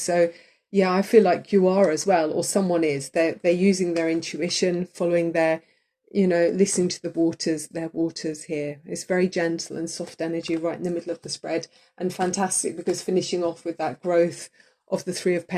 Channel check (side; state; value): both; identical; correlation 1.00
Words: yeah, I feel like you are as well, or someone is. They're using their intuition, following their, you know, listening to their waters here. It's very gentle and soft energy right in the middle of the spread, and fantastic because finishing off with that growth of the Three of